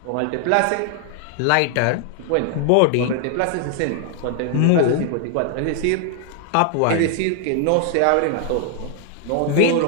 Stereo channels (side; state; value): both; different; correlation 0.00